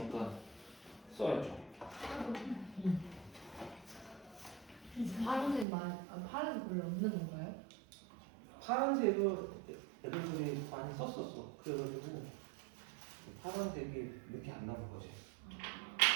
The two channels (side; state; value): left; drops out; at 5.7 s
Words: 써야죠. 파란색 파란색 별로 없는 건가요? 파란색을 애들이 많이 썼었어. 그래가지고 파란색이 이렇게 안 나온 거지.